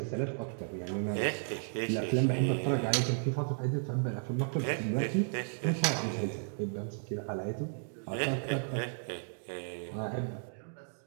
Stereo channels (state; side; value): silent; left; digital silence